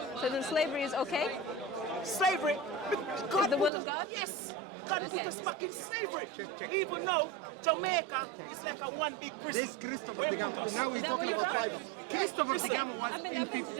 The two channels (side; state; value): left; drops out; at 3.7 s